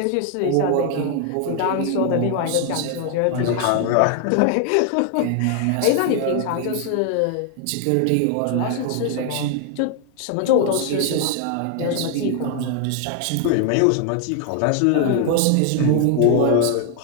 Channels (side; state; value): both; different; correlation 0.00